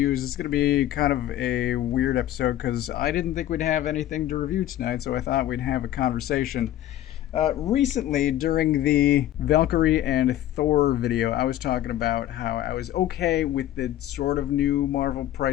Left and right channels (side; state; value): right; quieter; 13.0 dB